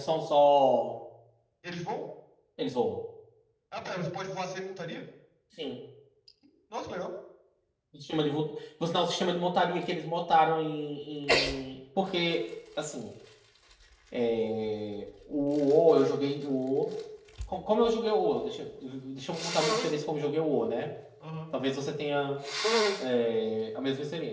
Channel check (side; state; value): both; identical; correlation 1.00